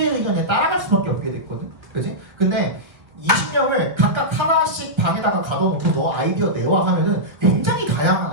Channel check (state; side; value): late; left; 1.6 ms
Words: 의견에 따라갈 수밖에 없게 됐거든. 그지? 근데 20명을 각각 하나씩 방에다가 가둬놓고 너 아이디어 내와 하면은 굉장히 다양한